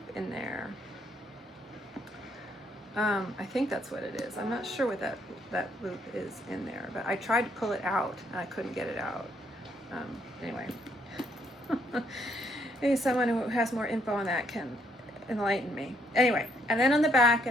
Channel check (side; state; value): both; normal; correlation 0.71